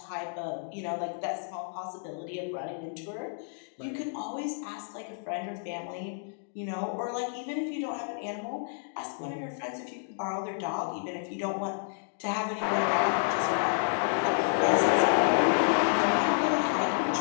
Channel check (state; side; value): silent; right; digital silence